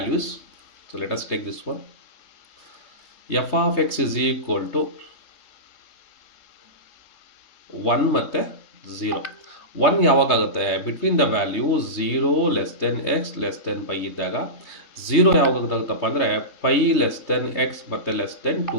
So let us take this one. f of x is equal to 1 ಮತ್ತು 0. 1 ಯಾವಾಗ ಆಗುತ್ತೆ, between the value 0 less than x less than pi ಇದ್ದಾಗ. 0 ಯಾವಾಗ ಆಗುತ್ತಪ್ಪ ಅಂದರೆ ಪೈ ಲೆಸ್ ದೆನ್ ಎಕ್ಸ್ ಮತ್ತು less than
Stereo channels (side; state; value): right; late; 3.2 ms